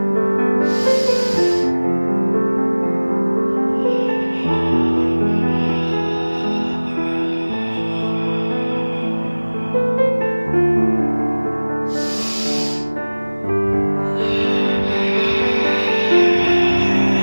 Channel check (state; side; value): inverted; both; correlation -1.00